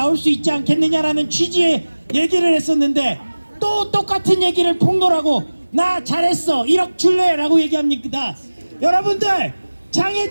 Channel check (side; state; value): both; inverted; correlation -1.00